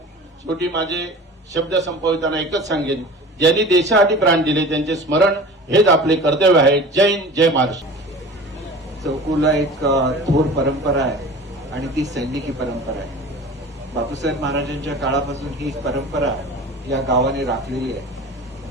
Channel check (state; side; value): normal; both; correlation 0.39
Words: शेवटी माझे शब्द संपविताना एकच सांगेन, ज्यांनी देशासाठी प्राण दिले त्यांचे स्मरण हेच आपले कर्तव्य आहे. जय हिंद, जय महाराष्ट्र. चौकुला एक थोर परंपरा आहे आणि ती सैनिकी परंपरा आहे. बापूसाहेब महाराजांच्या काळापासून ही परंपरा या गावाने राखलेली आहे